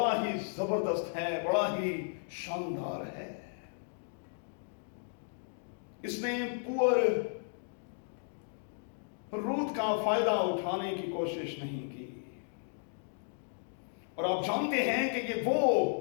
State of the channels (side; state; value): right; silent; digital silence